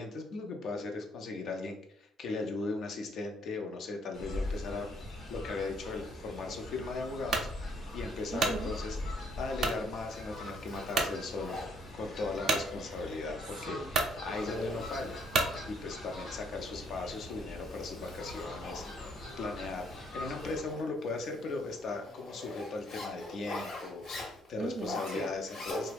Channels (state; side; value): normal; both; correlation 0.66